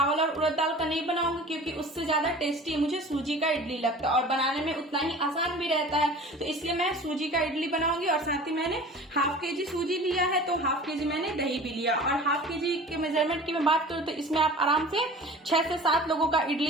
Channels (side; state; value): both; normal; correlation 0.41